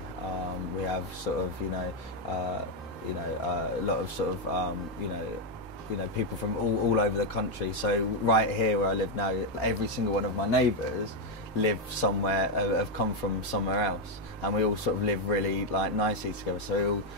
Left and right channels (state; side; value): normal; both; correlation 0.03